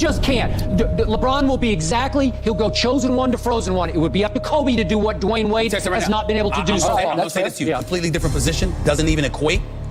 can't. LeBron will be he'll go chosen one to frozen one. It would be up to Kobe to do what Dwayne Wade has not been able to do so far. I'm going to say this to you. Completely different position. Doesn't even equate.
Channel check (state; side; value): identical; both; correlation 1.00